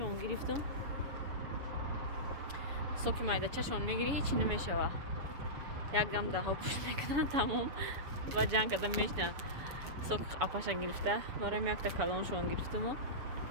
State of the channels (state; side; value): late; left; 7.1 ms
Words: گرفتم. سوک مایداچه‌شون میگیری هیچی نمیشه. یک دم ده ها پوش میکنن تمام و جنگ کردن میشنن. سوک اپاش گرفته. برای یک تا کلونشون گرفتم.